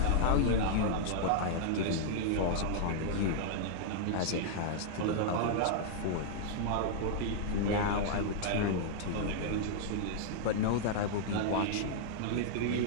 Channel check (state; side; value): different; both; correlation -0.01